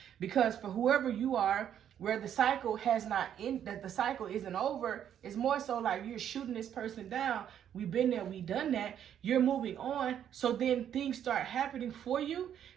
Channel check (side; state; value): left; quieter; 9.7 dB